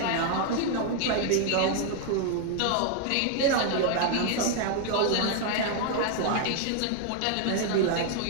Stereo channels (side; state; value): both; different; correlation 0.00